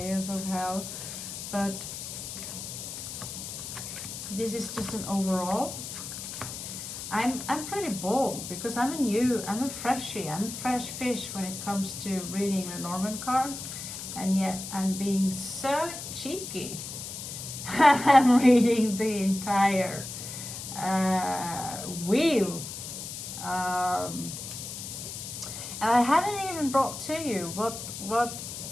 of hell, but this is just an overall. I'm pretty bold because I'm a freshie, I'm a fresh fish when it comes to reading Lenormand cards, and yet I'm being so cheeky. I'm reading the entire wheel. And I haven't even brought to you what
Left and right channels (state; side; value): noise; left; hiss, 8 dB below the sound